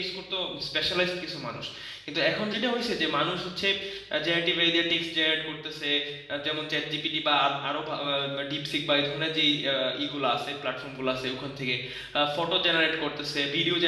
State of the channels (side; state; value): both; identical; correlation 1.00